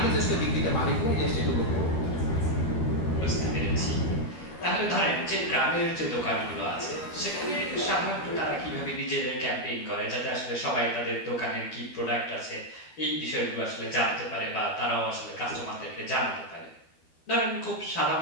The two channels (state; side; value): late; right; 12 ms